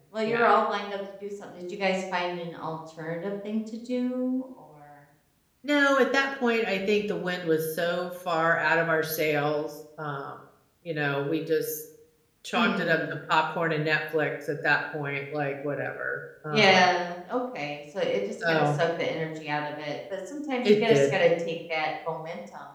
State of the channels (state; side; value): identical; both; correlation 1.00